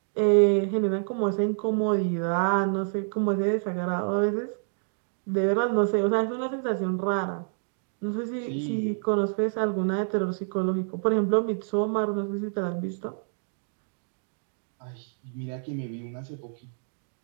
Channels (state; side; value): silent; left; digital silence